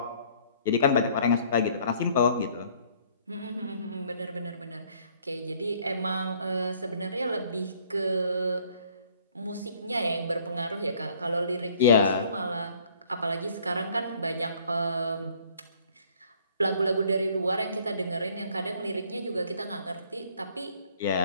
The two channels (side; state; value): both; inverted; correlation -0.59